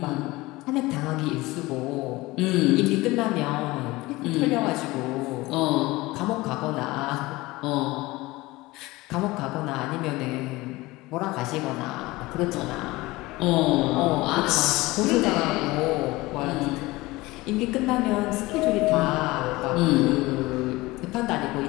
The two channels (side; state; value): right; quieter; 20.5 dB